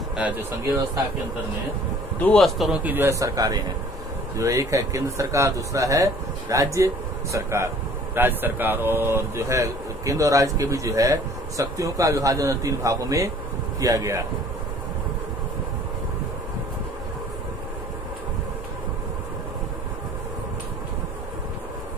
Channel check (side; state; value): both; normal; correlation 0.52